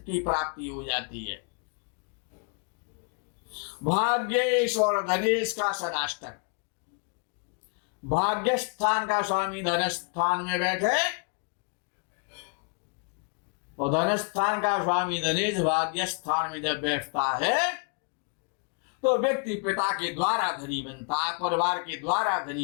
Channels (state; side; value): quieter; right; 38.3 dB